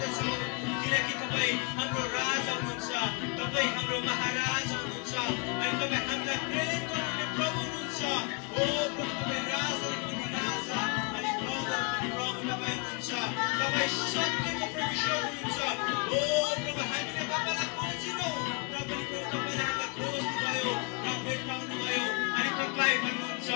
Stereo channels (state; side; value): quieter; right; 32.1 dB